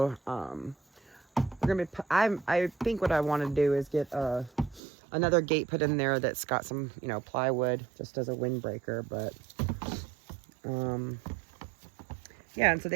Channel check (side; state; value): left; drops out; at 4.8 s